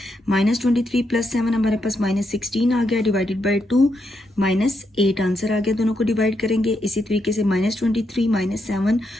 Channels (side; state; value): both; normal; correlation 0.81